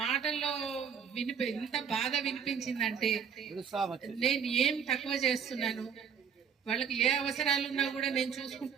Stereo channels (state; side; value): quieter; left; 7.4 dB